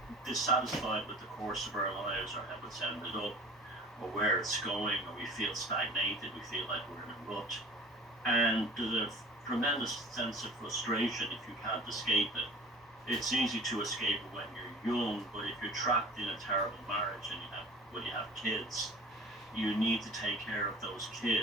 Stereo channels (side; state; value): both; normal; correlation 0.42